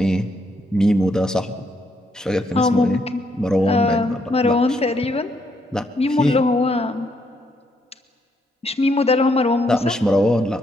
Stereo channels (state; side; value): normal; both; correlation 0.74